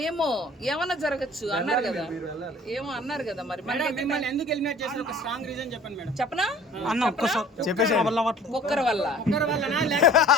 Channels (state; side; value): normal; both; correlation 0.49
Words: ఏమో ఏమన్నా జరగచ్చు అన్నారు కదా, ఏమో అన్నారు కదా. మరి చెప్పనా? కుక్కర్ వల్ల